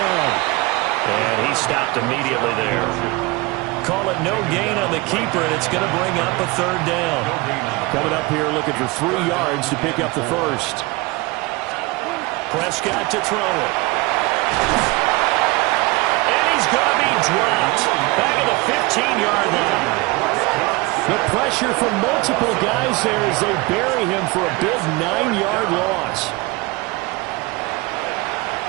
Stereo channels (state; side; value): quieter; left; 23.5 dB